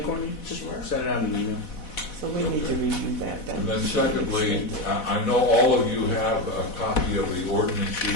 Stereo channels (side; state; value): right; late; 4.1 ms